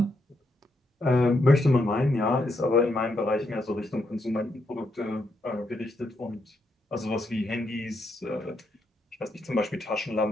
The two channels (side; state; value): both; normal; correlation 0.79